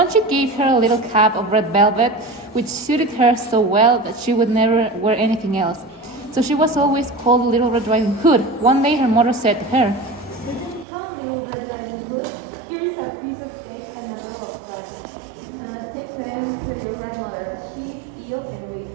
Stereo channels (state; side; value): drops out; left; at 10.9 s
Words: she gave her a little cap of red velvet, which suited her so well that she would never wear anything else. So she was always called Little Red Riding Hood. One day her mother said to her, Come, little Red Riding Hood. Here's a piece of cake and a roll of bread. Take them to your grandmother. She's ill and weak,